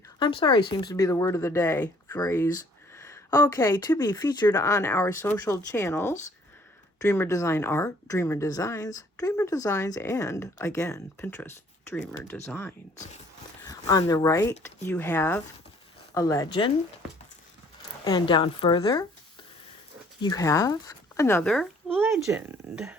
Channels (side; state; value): both; normal; correlation 0.59